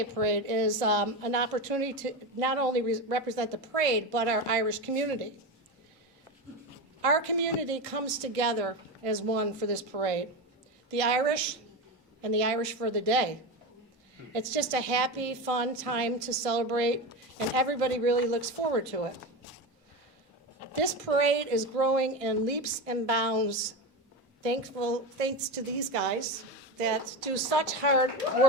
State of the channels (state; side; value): normal; both; correlation 0.19